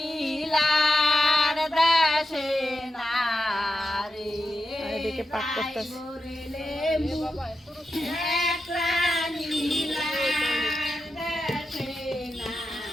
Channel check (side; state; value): both; normal; correlation 0.88